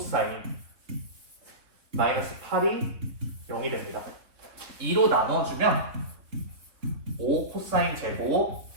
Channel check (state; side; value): late; left; 3.2 ms